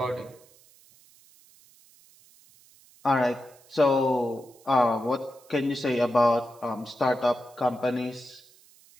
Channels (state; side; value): noise; right; hiss, 27 dB below the sound